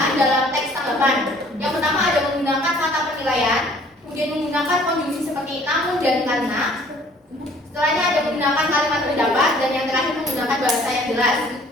dalam teks tanggapan. Yang pertama ada menggunakan kata penilaian, kemudian menggunakan konjungsi seperti namun dan karena. Setelahnya ada menggunakan kalimat pendapat, dan yang terakhir menggunakan bahasa yang jelas.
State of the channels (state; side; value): normal; both; correlation 0.56